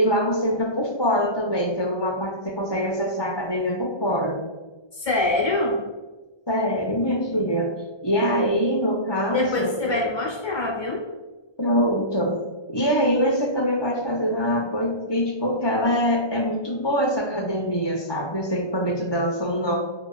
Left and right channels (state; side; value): late; right; 1.2 ms